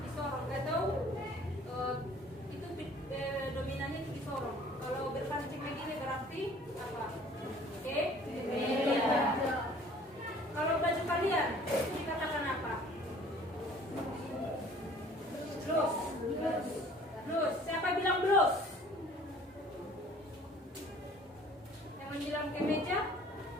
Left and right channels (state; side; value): normal; both; correlation 0.52